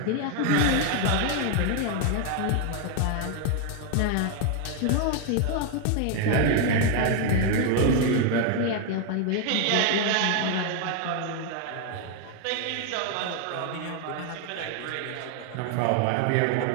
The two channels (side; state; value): both; different; correlation 0.01